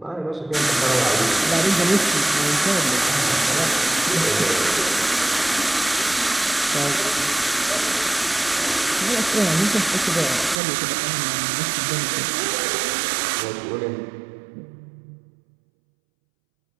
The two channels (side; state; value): left; drops out; at 10.6 s